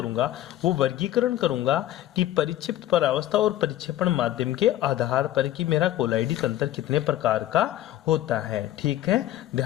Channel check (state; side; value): quieter; right; 13.6 dB